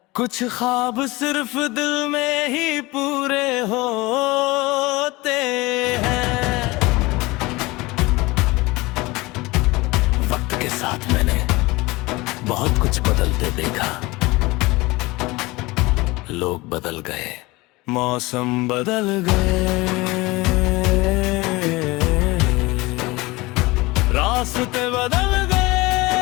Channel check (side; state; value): right; quieter; 22.1 dB